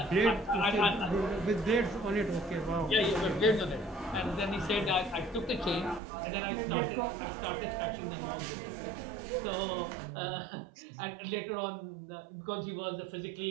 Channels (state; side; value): drops out; left; at 6.0 s